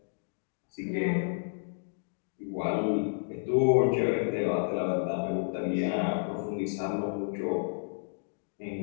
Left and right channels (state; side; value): silent; right; digital silence